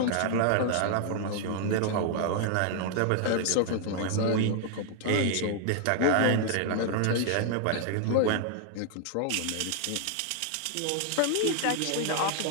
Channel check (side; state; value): both; different; correlation 0.00